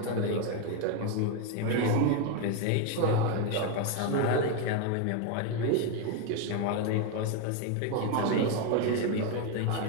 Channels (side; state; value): both; different; correlation 0.02